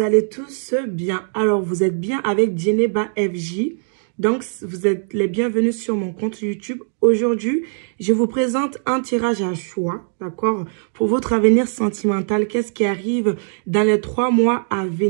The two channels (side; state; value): left; silent; digital silence